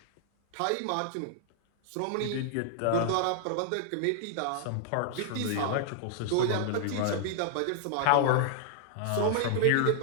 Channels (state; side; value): different; both; correlation 0.00